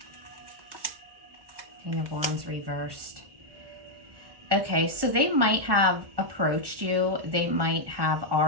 King of Wands reversed. Okay, so they might have approached you. They might have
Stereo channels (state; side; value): late; left; 1.1 ms